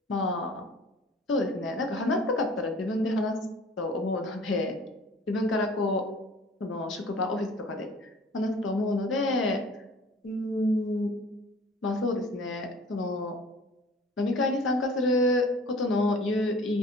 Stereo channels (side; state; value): both; normal; correlation 0.47